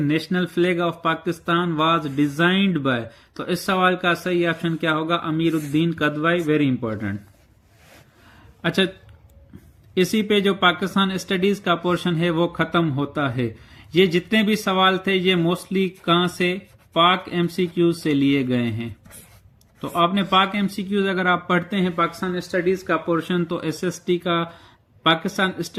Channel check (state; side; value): identical; both; correlation 1.00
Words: flag of Pakistan was designed by, तो इस सवाल का सही ऑप्शन क्या होगा? Amiruddin Kidwai, very important. अच्छा, इसी पे जो पाकिस्तान स्टडीज का पोर्शन है वो खत्म होता है। ये जितने भी सवाल थे ये मोस्टली कहां से? पाक एमसीक्यूज से लिए गए हैं। तो आपने पाक एमसीक्यूज अगर आप पढ़ते हैं पाकिस्तान स्टडीज का पोर्शन तो एसएसटी का पाकिस्तान